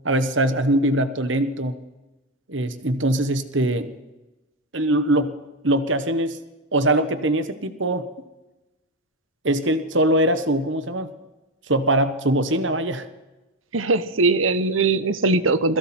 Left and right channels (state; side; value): normal; both; correlation 0.10